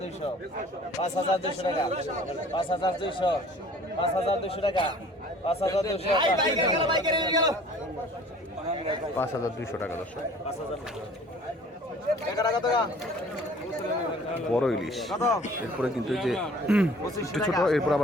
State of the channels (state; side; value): normal; both; correlation 0.50